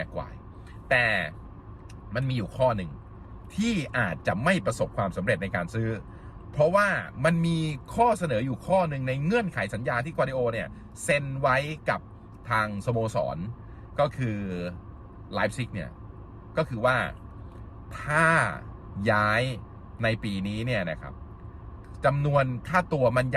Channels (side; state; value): both; identical; correlation 1.00